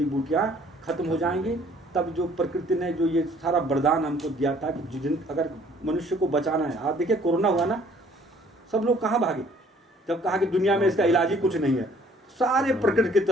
बूटियाँ खत्म हो जाएंगी। तब जो प्रकृति ने जो ये सारा वरदान हमको दिया था कि जिन अगर मनुष्य को बचाना है, आप देखिए कोरोना हुआ ना, सब लोग कहाँ भागे जब कहा कि दुनिया में इसका इलाज ही कुछ नहीं है, सारे प्रकृति की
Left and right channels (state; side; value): normal; both; correlation 0.58